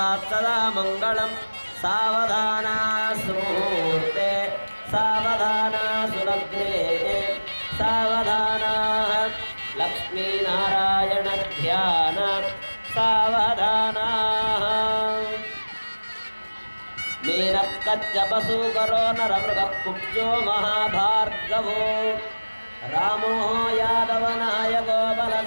सदा मङ्गलं सावधाना सुमुहूर्ते सावधाना सुलग्ने सावधाना लक्ष्मीनारायण ध्यान सावधाना मीनक्कच्चपसूकरो नरमृगः कुब्जो महाभार्गवो रामो यादवनायको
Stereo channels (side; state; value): both; inverted; correlation -1.00